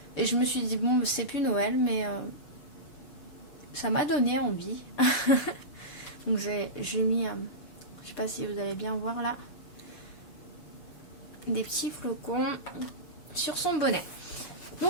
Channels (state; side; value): late; right; 6.8 ms